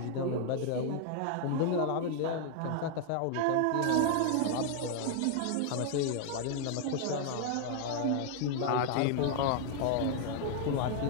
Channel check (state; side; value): different; both; correlation 0.00